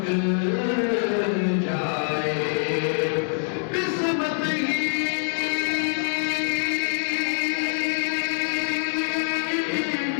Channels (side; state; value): right; silent; 62 dB below the other